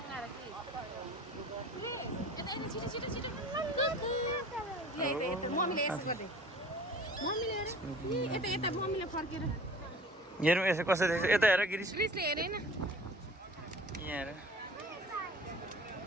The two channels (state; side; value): normal; both; correlation 0.44